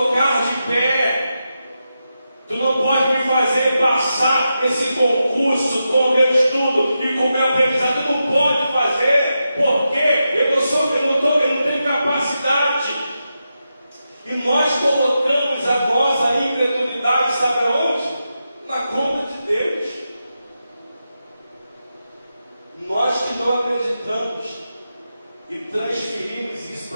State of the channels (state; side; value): inverted; both; correlation -0.88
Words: de pé, tu não pode me fazer passar esse concurso com o meu estudo e com o meu aprendizado. Tu não pode fazer, porque eu não tenho capacidade. E nós colocamos a nossa incredulidade, sabe aonde? Na conta de Deus. Nós que não acreditamos e transferimos isso